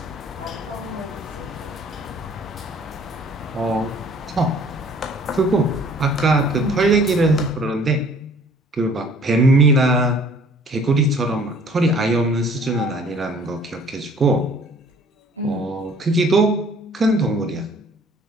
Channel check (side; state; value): both; normal; correlation 0.55